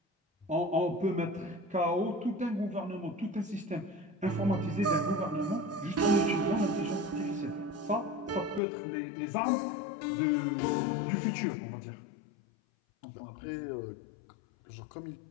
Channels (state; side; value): drops out; right; at 8.6 s